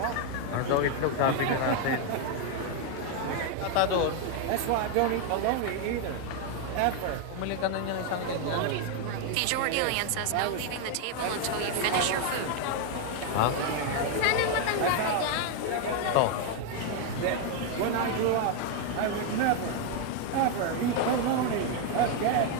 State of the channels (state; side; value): different; both; correlation 0.01